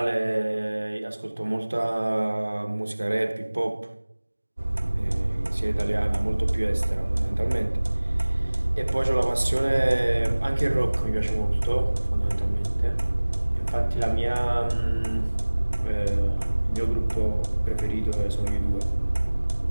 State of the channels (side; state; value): both; inverted; correlation -1.00